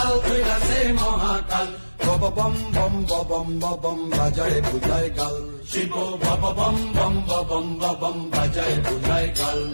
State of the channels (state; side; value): inverted; both; correlation -1.00